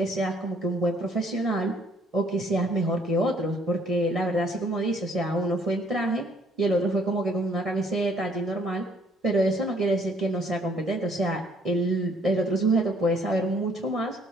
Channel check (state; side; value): normal; both; correlation 0.63